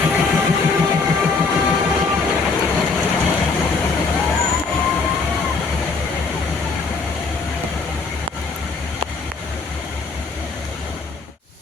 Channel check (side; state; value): right; quieter; 4.3 dB